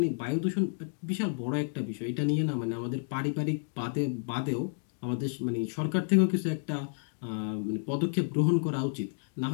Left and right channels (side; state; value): right; silent; digital silence